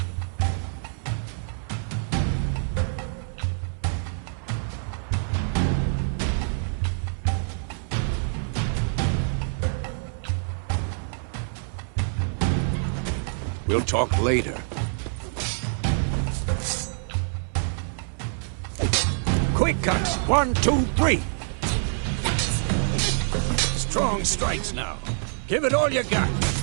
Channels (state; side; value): silent; left; digital silence